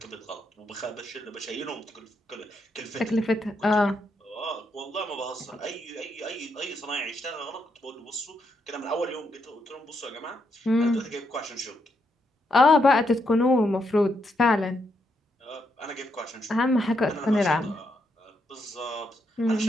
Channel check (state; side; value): normal; both; correlation 0.79